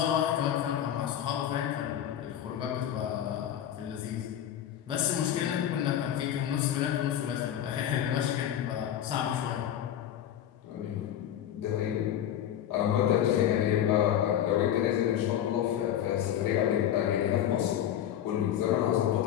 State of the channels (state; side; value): quieter; right; 10.7 dB